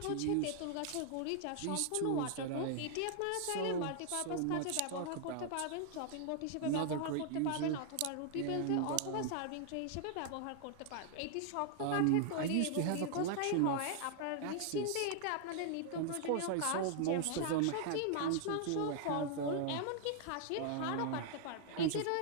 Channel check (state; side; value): different; both; correlation -0.01